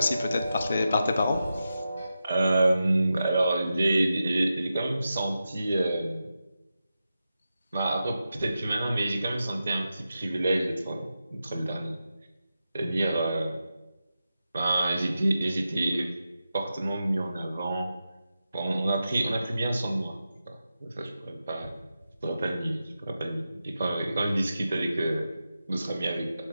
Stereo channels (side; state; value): both; inverted; correlation -0.90